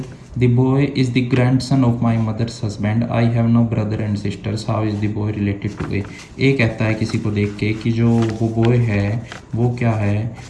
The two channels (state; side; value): identical; both; correlation 1.00